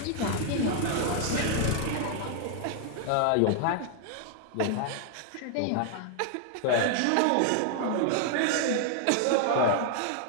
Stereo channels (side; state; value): both; different; correlation 0.00